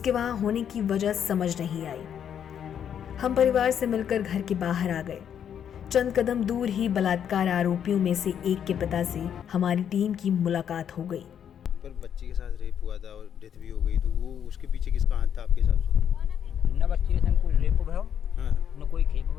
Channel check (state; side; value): quieter; right; 8.8 dB